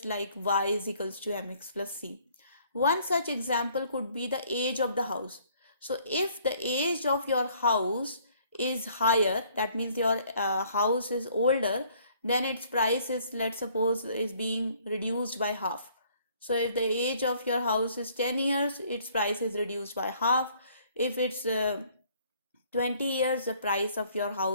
like y is equals to mx plus c. One such example could be the age of the house. So if the age of your house is higher, that means your house is older, then its price is, let's suppose, is being reduced by half. So if the age of your house is 10 years, its price is reduced by half. If it's 20 years, the price of your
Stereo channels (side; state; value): both; inverted; correlation -0.61